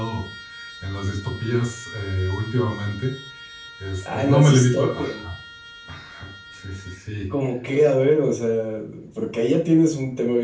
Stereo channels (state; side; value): identical; both; correlation 1.00